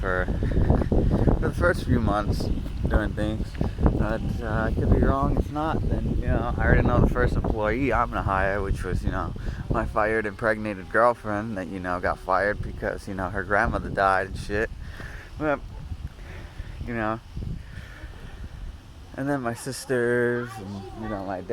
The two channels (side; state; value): both; identical; correlation 1.00